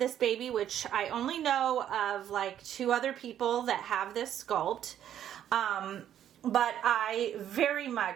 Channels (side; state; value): left; quieter; 10.5 dB